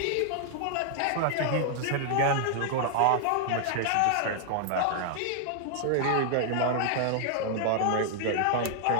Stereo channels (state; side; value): different; both; correlation 0.00